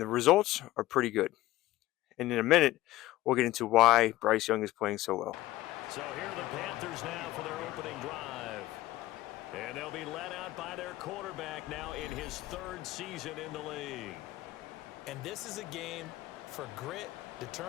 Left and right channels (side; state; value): right; quieter; 16.5 dB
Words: results are pretty good. And in a minute, we'll get into why Bryce Young is playing so well. So here are the Panthers now for their opening drive. And they'll be led out by their quarterback now in his 3rd season in the league. And this is a game for grit,